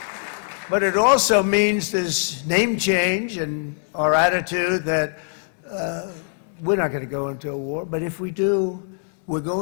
But it also means this name change and our attitude that we're not going to go into a war, but if we do, we're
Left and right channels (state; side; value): silent; right; digital silence